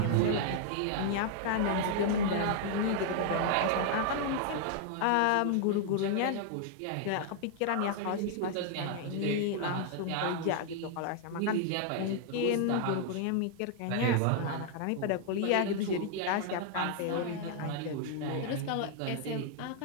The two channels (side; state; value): both; different; correlation 0.00